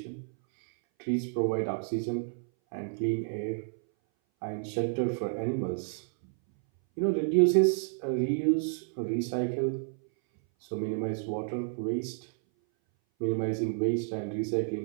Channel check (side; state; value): left; silent; 58 dB below the other